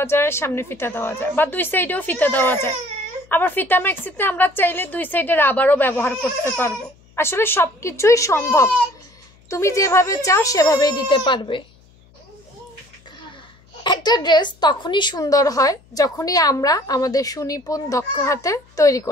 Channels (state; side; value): noise; left; hum, 29 dB below the sound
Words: যায়, সামনে ফিতা দেওয়া যায়, বা দুই সাইডেও ফিতা দেওয়া যায়। আবার ফিতা ম্যাক্সিতে আমরা চাইলে দুই সাইডে রাবারও ব্যবহার করতে পারবো। আসলে সব কিছুই সম্ভব, তুমি যেভাবে চাও সেভাবেই দিতে পারবে। একটা ড্রেস তখনই সুন্দর হয় যখনই আমরা আমাদের সুনিপুণ দক্ষ হাতে তৈরি